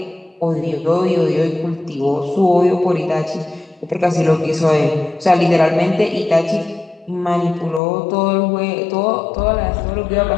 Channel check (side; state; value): right; drops out; at 7.8 s